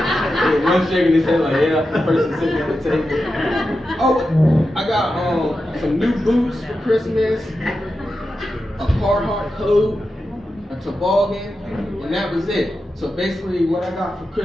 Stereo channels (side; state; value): both; normal; correlation 0.90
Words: One shaking his head like, yeah, the person sitting at the table. Oh, I got some new boots for Christmas, a Carhartt coat, a toboggan, and that was it. So basically what I got for